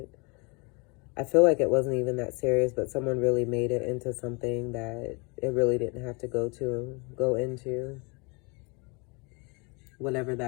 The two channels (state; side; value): quieter; right; 30.9 dB